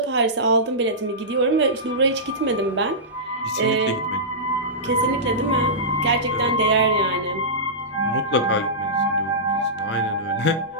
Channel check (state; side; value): normal; both; correlation -0.16